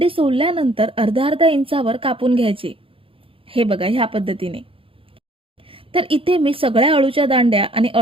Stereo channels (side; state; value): left; late; 0.26 ms